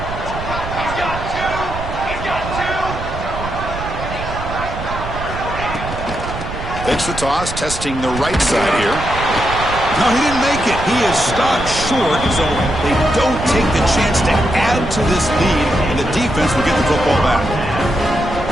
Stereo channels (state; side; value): noise; right; rumble, 8 dB below the sound